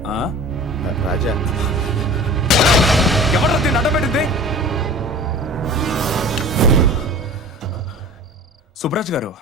ఆ? రాజా, ఎవరు దీన్ని అడ్డపెట్టింది? సుబ్రాజ్ గారు,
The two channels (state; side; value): normal; both; correlation 0.40